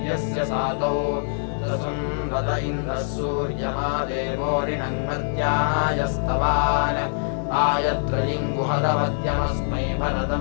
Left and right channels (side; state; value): right; silent; digital silence